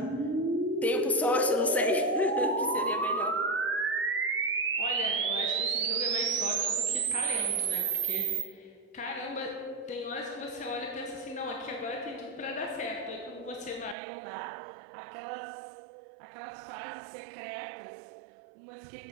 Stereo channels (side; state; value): left; drops out; at 14.0 s